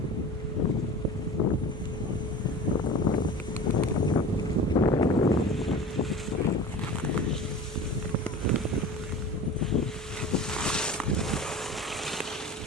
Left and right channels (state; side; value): normal; both; correlation 0.36